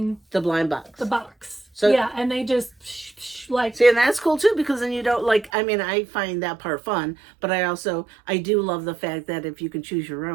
the blind box. The box. So yeah, and they just see, and that's cool too, because then you don't I find that part fun, but I do love the fact that if you can choose your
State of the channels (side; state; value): left; drops out; at 5.5 s